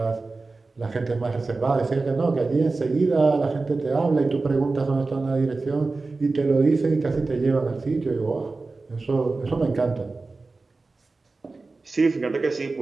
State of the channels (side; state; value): left; quieter; 3.7 dB